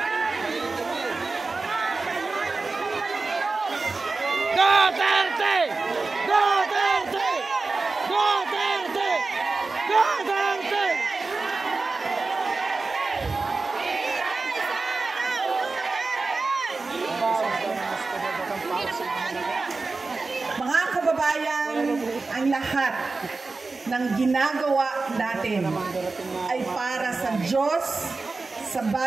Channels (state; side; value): quieter; left; 3.8 dB